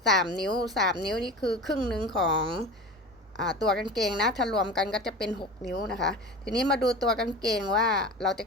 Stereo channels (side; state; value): both; normal; correlation 0.33